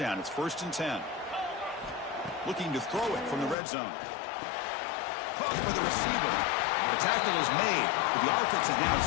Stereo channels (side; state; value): right; drops out; at 3.6 s